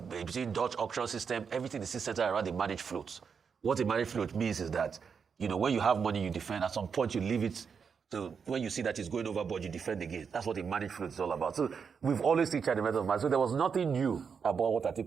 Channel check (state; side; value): quieter; left; 6.2 dB